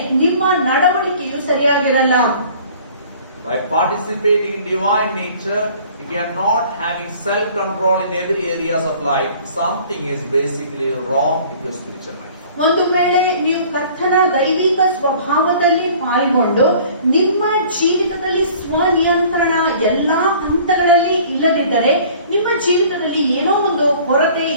ನಿಮ್ಮ ನಡವಳಿಕೆಯು ಸರಿಯಾಗಿರಲ್ಲ. By participating in divine nature, if you are not having self-control in every areas of life, something is basically wrong with your spiritual life. ಒಂದು ವೇಳೆ ನೀವು ಕರ್ತನ ದೈವಿಕ ಸ್ವಭಾವದಲ್ಲಿ ಪಾಲ್ಗೊಂಡು ನಿಮ್ಮ ಜೀವಿತದಲ್ಲಿ ಸ್ವನಿಯಂತ್ರಣ ಎಲ್ಲಾ ಹಂತಗಳಲ್ಲಿ ಇಲ್ಲದಿದ್ದರೆ ನಿಮ್ಮ ಜೀವಿತದಲ್ಲಿ ಏನೋ ಒಂದು ಕೊರತೆ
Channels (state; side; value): inverted; both; correlation -0.50